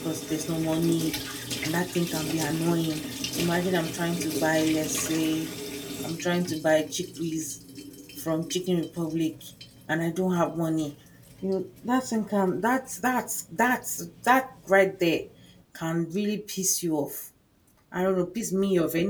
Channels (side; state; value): both; identical; correlation 1.00